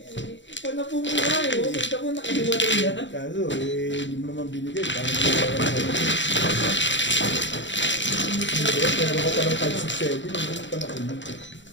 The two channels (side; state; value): right; late; 0.54 ms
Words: Ipa na po muna eh. Kita mo nakahiwalay yan. Kaso, hindi mo naman binigay. Parang pero ka pa ng 567, hindi mo pa nakunin.